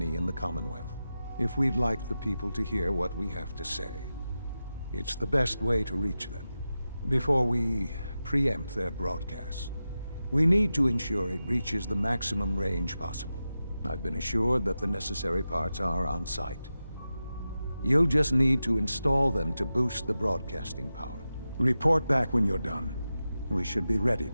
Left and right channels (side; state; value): both; inverted; correlation -0.92